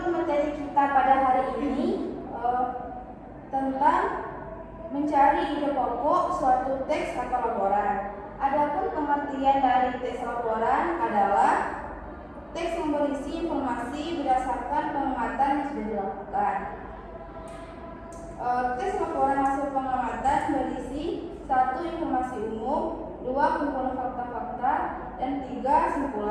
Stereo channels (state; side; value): identical; both; correlation 1.00